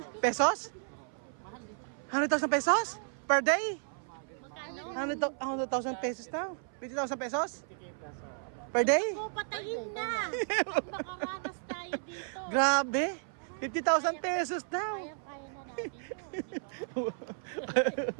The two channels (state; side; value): silent; left; 56 dB below the other